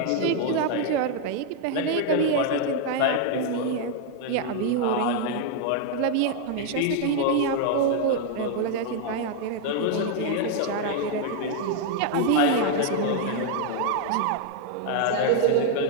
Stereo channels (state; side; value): different; both; correlation 0.00